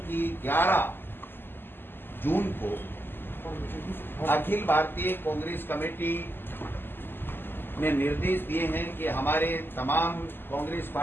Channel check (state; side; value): late; right; 0.099 ms